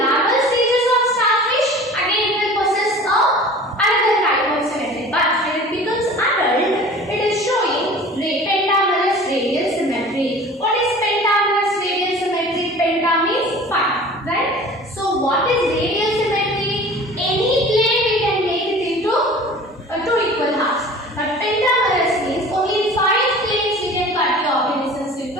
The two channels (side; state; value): both; normal; correlation 0.42